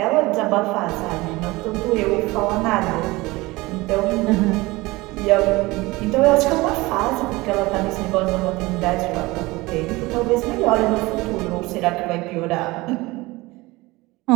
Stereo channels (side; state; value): left; quieter; 21.4 dB